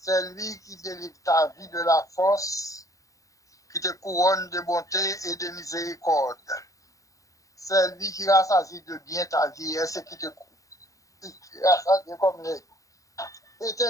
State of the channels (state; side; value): late; right; 0.16 ms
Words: C'est lui qui délivre ta vie de la force, qui te couronne de bonté et de miséricorde. C'est lui qui rassasie de bien ta vie et ce qui te rassasie comme les.